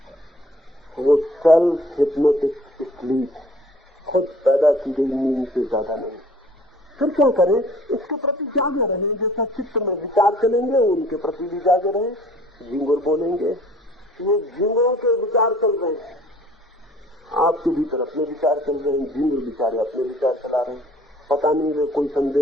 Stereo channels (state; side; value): normal; both; correlation 0.53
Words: वो सेल्फ हिप्नोटिक स्लीप, खुद पैदा की गई नींद से ज्यादा नहीं। फिर क्या करें? इसके प्रति जागे रहें, जैसा चित्त में विचार चलेंगे उनके प्रति भी जागे रहें। झिंगुर बोलेंगे, ये झिंगुरों के विचार चल रहे हैं, आपके भीतर अपने विचार चल रहे हैं, झिंगुर बेचारे अपने विचार चला रहे हैं, पता नहीं वे कोई